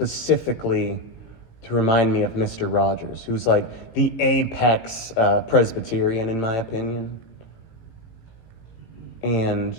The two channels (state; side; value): late; right; 18 ms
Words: to remind me of Mr. Rogers, who's like the apex Presbyterian, in my opinion. And